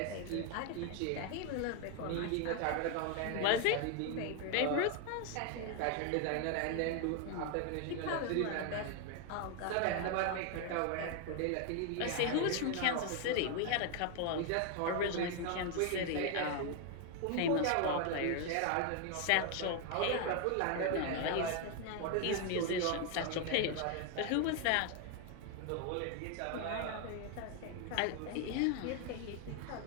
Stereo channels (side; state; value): both; different; correlation 0.01